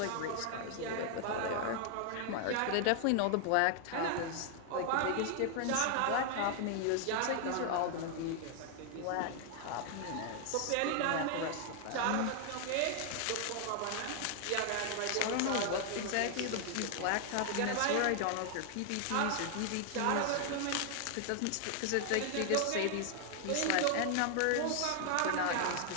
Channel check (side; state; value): both; different; correlation 0.00